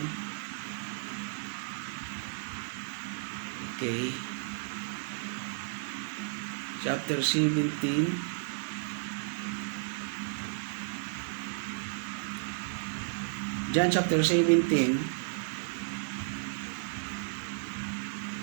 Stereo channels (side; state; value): left; silent; digital silence